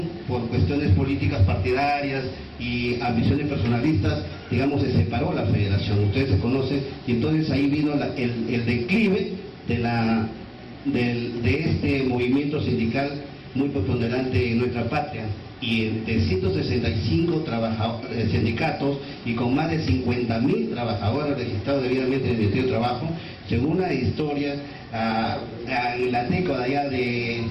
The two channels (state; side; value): identical; both; correlation 1.00